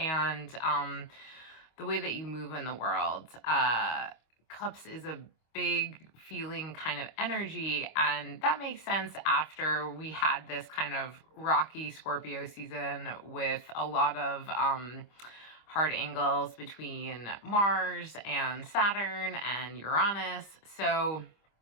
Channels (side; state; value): right; late; 25 ms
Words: the way that you move in the world. Cups is a big feeling kind of energy, and that makes sense after we had this kind of rocky Scorpio season with a lot of hard angles between Mars and Saturn and Uranus. So